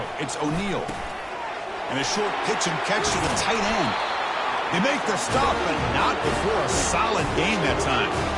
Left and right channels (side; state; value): both; identical; correlation 1.00